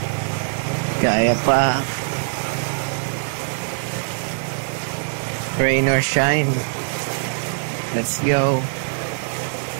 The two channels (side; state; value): left; silent; digital silence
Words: Kaya pa. Rain or shine. Let's go.